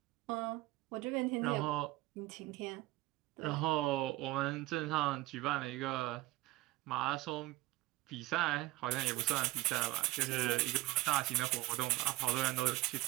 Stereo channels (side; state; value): left; quieter; 18.7 dB